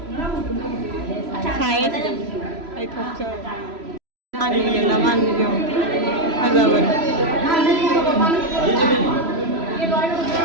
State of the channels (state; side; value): late; left; 3.0 ms